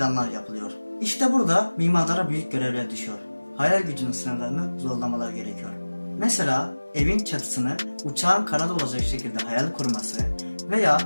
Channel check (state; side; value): inverted; both; correlation -1.00